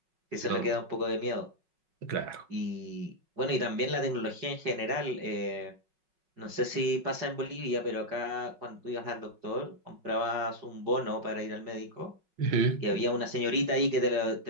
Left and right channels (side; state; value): left; late; 5.4 ms